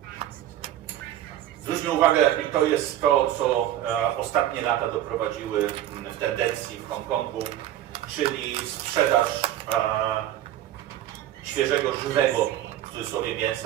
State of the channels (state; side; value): quieter; left; 12.4 dB